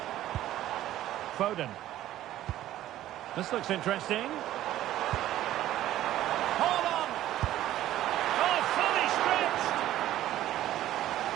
Foden. This looks interesting. Hold on! Oh, fully stretched!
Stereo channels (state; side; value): quieter; left; 13.5 dB